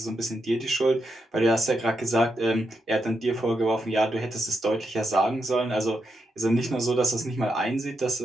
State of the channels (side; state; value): both; normal; correlation 0.84